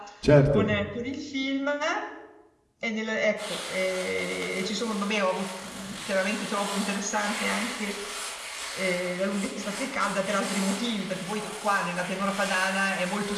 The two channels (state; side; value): identical; both; correlation 1.00